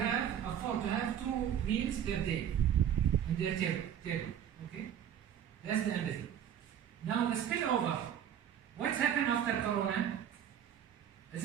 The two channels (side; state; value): left; quieter; 9.5 dB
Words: afford to have 2 meals per day in their table. Okay, that's the empathy. Now the spillover. What's happened after Corona? Is